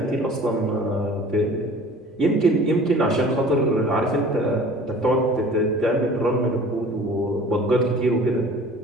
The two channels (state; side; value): normal; both; correlation 0.45